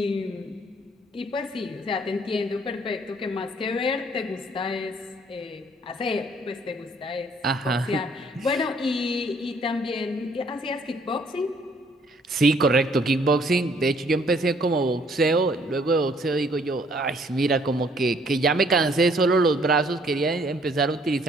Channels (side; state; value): both; normal; correlation 0.63